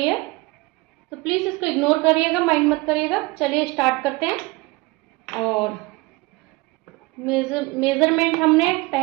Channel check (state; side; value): quieter; left; 23.5 dB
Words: है, तो प्लीज इसको इग्नोर करिएगा, माइंड मत करिएगा। चलिए स्टार्ट करते हैं। और मेजरमेंट हमने